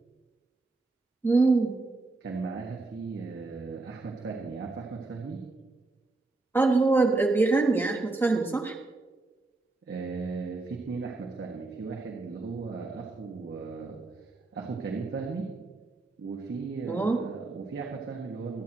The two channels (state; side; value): quieter; left; 3.3 dB